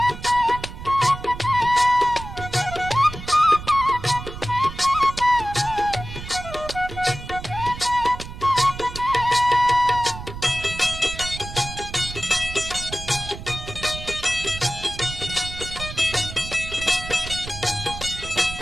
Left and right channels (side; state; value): right; noise; rumble, 11 dB below the sound